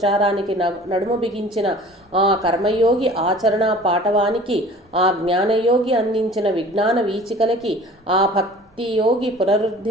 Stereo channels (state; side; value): normal; both; correlation 0.46